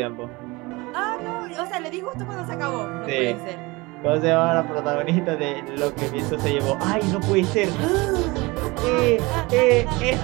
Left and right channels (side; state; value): left; quieter; 23.5 dB